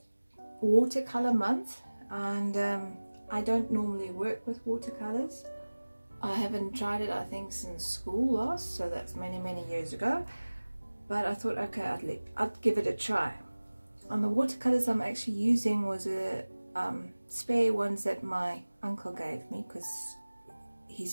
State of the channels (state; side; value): inverted; both; correlation -1.00